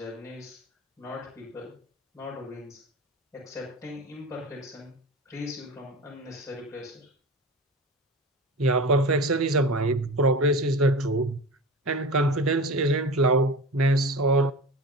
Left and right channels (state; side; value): normal; both; correlation 0.32